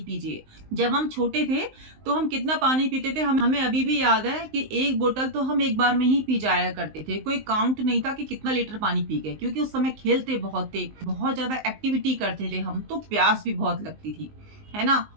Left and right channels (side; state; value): left; late; 19 ms